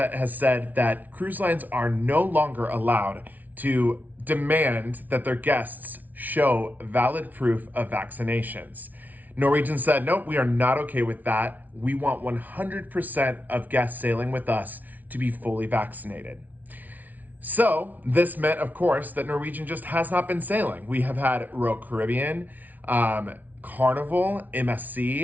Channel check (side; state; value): left; late; 0.078 ms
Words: has said that cruise lines are no longer allowed to demand that their guests show valid proof of vaccinations. Norwegian said, nope, we are not okay with that. We want 100% of guests sailing with us to be fully vaccinated. So this meant, of course, that Norwegian just has not been sailing. We have had Royal Caribbean, Carnival,